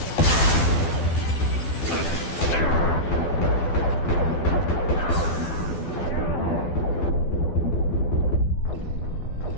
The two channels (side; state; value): right; late; 12 ms